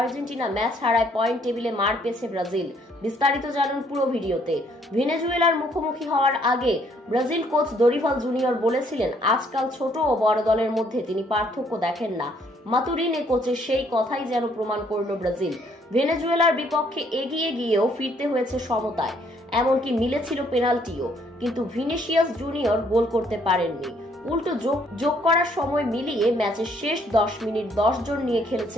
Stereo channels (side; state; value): both; normal; correlation 0.66